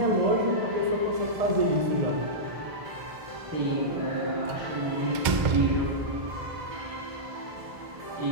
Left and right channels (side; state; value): left; late; 2.0 ms